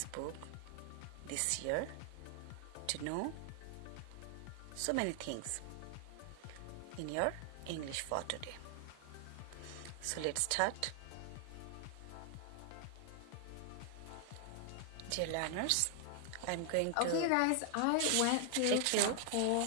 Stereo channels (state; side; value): different; both; correlation 0.00